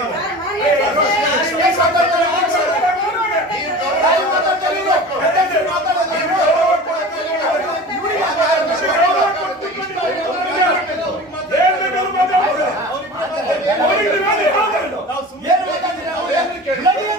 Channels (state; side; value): normal; both; correlation 0.36